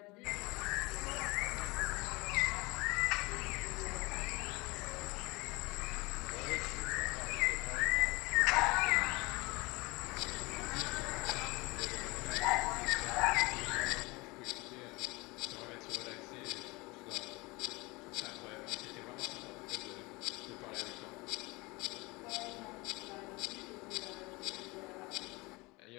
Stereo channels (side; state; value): right; quieter; 24.3 dB